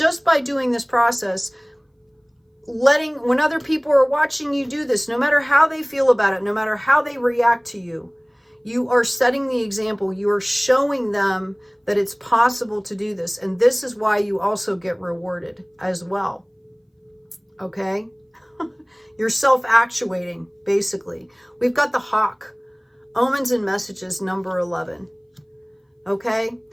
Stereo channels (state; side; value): identical; both; correlation 1.00